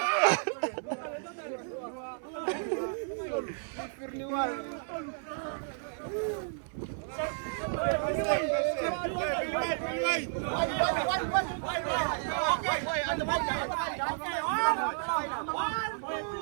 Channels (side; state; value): left; silent; 56 dB below the other